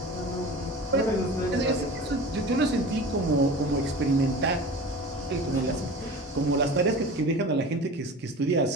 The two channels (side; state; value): both; normal; correlation 0.36